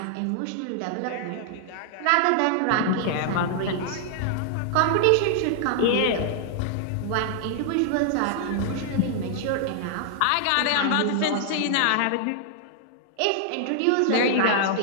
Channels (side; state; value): both; different; correlation -0.01